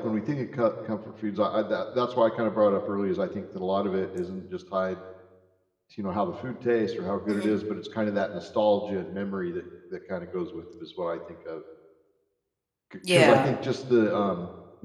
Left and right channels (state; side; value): identical; both; correlation 1.00